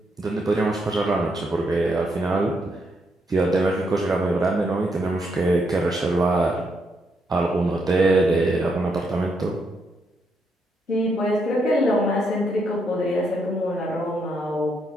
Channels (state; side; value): normal; both; correlation 0.78